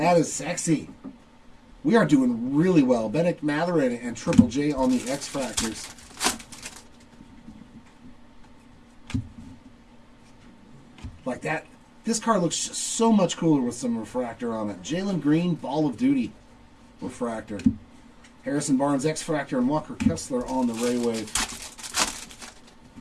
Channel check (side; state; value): both; identical; correlation 1.00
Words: is sexy. We are doing really well. Benedict Matherin and Triple J on the X-Fractors. Like that. This card looks so much cooler with some refractor on it. Jalen Green, Ball of Duty refractor. Harrison Barnes, X-Fractor, and Walker Kessler on the Ray Wave.